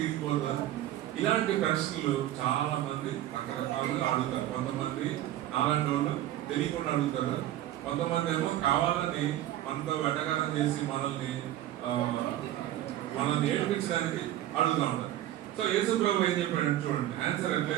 ఇరిగిపోతుందా? ఇలాంటి ప్రశ్నలు చాలా మంది రకరకాలుగా అడుగుతారు. కొంతమంది నాలాంటి వాళ్ళు తెలియకుండా అడుగుతారు, కొంతమంది ఏమో కావాలని మనతో వెటకారం చేసి మనల్ని ఏడిపించడానికి అడుగుతూ ఉంటారు. సో యేసు ప్రభు ఏం చెప్పాడు చూడండి, ఆన్సర్ ఎట్లా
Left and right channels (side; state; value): left; quieter; 13.3 dB